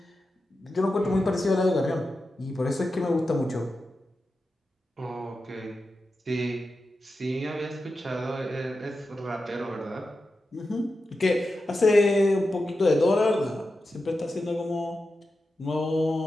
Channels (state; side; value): normal; both; correlation 0.91